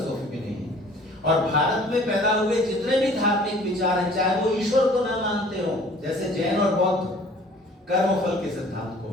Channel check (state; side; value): normal; both; correlation 0.51